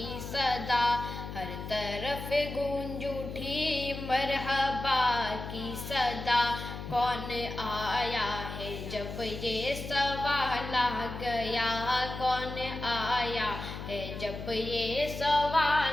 صدا، ہر طرف گونج اٹھی مرحبا کی صدا، کون آیا ہے جب یہ سوال آ گیا، کون آیا ہے جب یہ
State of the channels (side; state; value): left; noise; hum, 8 dB below the sound